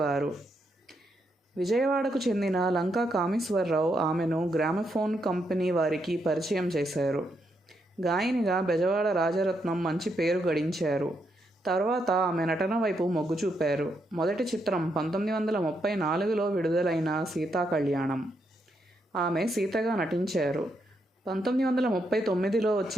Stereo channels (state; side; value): normal; both; correlation 0.79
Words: విజయవాడకు చెందిన లంకా కామేశ్వరరావు ఆమెను గ్రామఫోన్ కంపెనీ వారికి పరిచయం చేశారు. గాయనిగా బెజవాడ రాజరత్నం మంచి పేరు గడించారు. తర్వాత ఆమె నటన వైపు మొగ్గు చూపారు. మొదటి చిత్రం 1934లో విడుదలైన సీతాకళ్యాణం. ఆమె సీతగా నటించారు. 1939లో